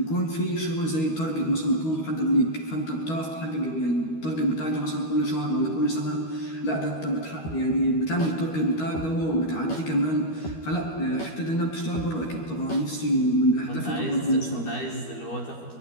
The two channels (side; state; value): right; late; 13 ms